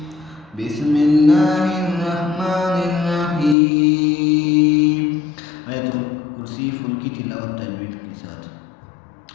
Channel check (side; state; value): right; drops out; at 3.6 s